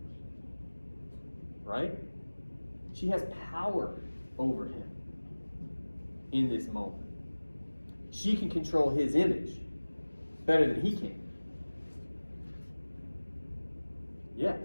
Right? She has power over him in this moment. She can control his image better than he can. Yeah.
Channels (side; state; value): both; inverted; correlation -1.00